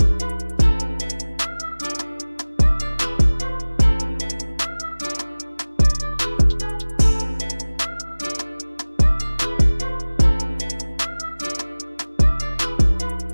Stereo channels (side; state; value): both; inverted; correlation -1.00